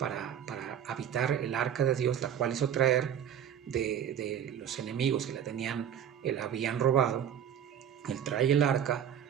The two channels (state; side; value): quieter; left; 9.1 dB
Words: habitar el arca de Dios, la cual hizo traer de los enemigos que la habían robado. Él trae el arca,